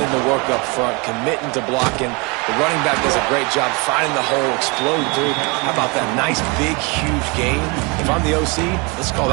in the work up front, committing to blocking. The running back does a great job finding the hole, explode through. How about that nice, big, huge gain? If I'm the OC, let's call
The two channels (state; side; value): quieter; left; 29.2 dB